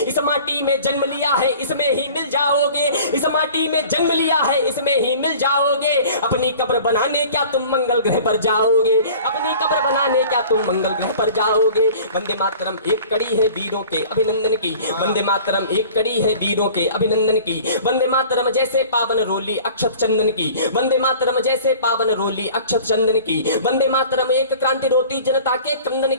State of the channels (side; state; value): both; inverted; correlation -0.45